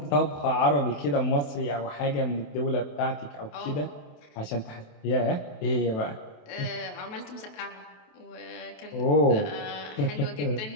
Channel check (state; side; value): late; right; 28 ms